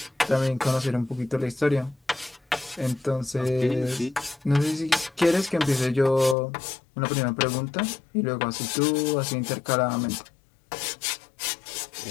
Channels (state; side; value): drops out; right; at 6.4 s